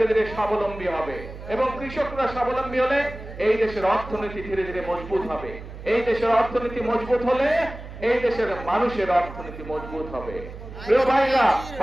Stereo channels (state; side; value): noise; right; hum, 13 dB below the sound